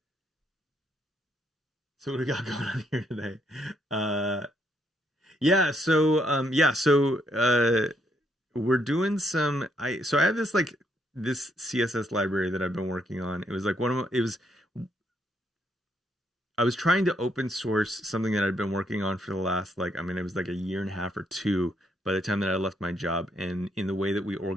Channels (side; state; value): both; normal; correlation 0.74